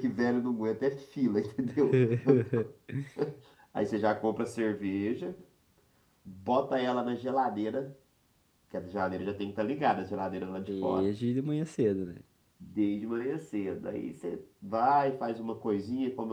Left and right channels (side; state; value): both; identical; correlation 1.00